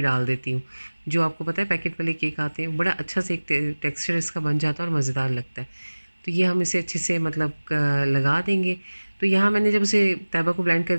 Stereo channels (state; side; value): inverted; both; correlation -1.00